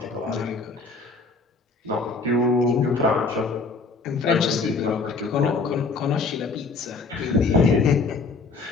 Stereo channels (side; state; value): right; quieter; 4.1 dB